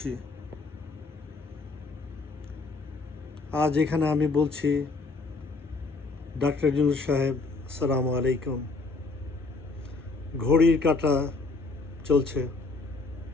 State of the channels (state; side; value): quieter; right; 3.8 dB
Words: আজ এখানে আমি বলছি, ডক্টর ইউনূস সাহেব, আসসালামু আলাইকুম। ঘড়ির কাঁটা চলছে,